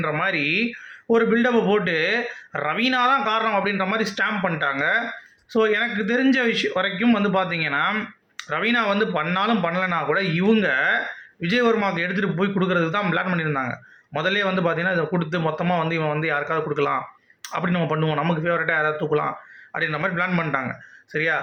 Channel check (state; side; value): identical; both; correlation 1.00